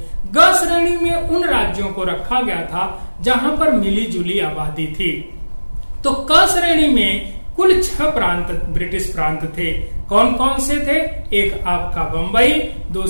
ग श्रेणी में उन राज्यों को रखा गया था जहां पर मिली जुली आबादी थी। तो क श्रेणी में कुल 6 प्रांत ब्रिटिश प्रांत थे। कौन कौन से थे? एक आपका बंबई,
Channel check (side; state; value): both; inverted; correlation -1.00